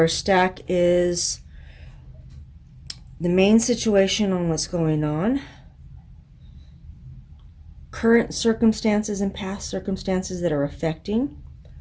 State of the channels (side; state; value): both; identical; correlation 1.00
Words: stack is the main situation on what's going on, current circumstances and past circumstances that are affecting